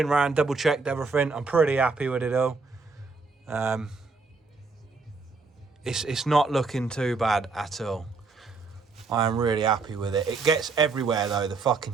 around, double checked everything. I'm pretty happy with it all. It's not looking too bad at all. I am really happy with it. It gets everywhere though. The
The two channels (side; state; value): left; quieter; 4.2 dB